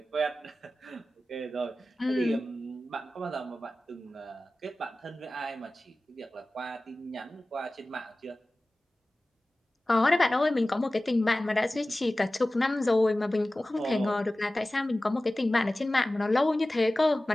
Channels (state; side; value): normal; both; correlation 0.97